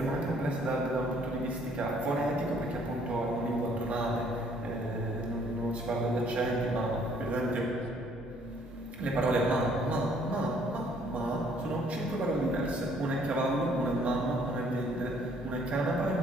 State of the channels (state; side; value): normal; both; correlation 0.63